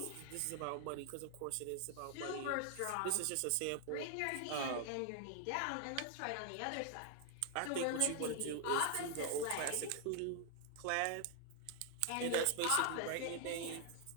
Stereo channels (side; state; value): both; different; correlation 0.00